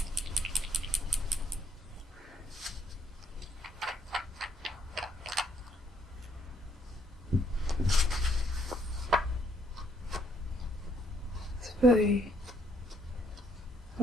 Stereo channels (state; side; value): normal; both; correlation 0.68